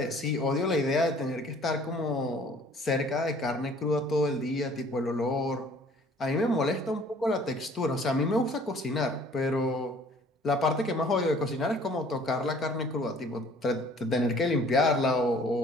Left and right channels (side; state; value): both; normal; correlation 0.54